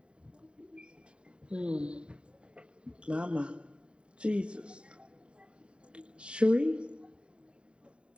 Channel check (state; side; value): late; left; 0.054 ms